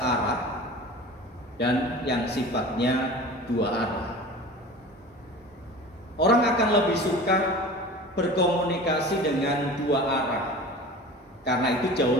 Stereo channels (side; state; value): both; normal; correlation 0.38